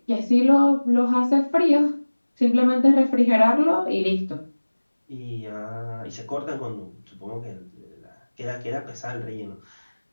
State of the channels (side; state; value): both; inverted; correlation -1.00